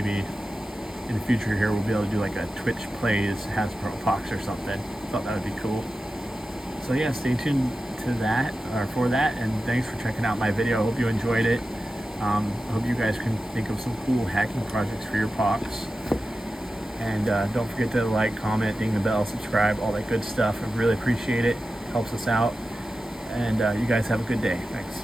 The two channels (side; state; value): both; normal; correlation 0.93